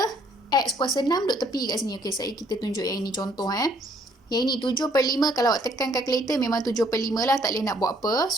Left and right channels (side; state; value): both; normal; correlation 0.65